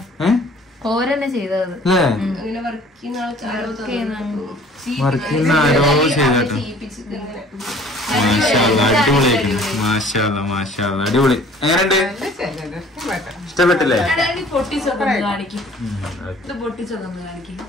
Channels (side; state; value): both; normal; correlation 0.52